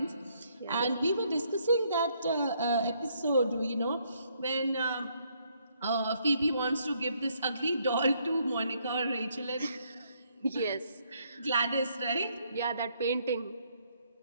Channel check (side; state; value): both; inverted; correlation -0.71